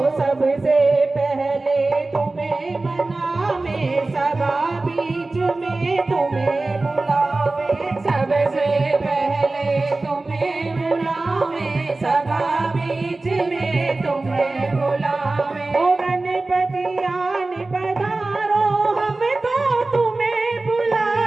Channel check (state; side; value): quieter; left; 3.2 dB